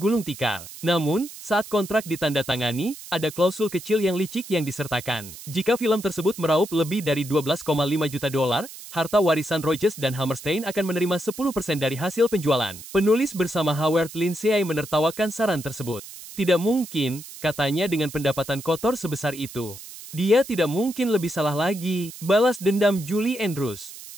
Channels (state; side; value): noise; right; hiss, 14 dB below the sound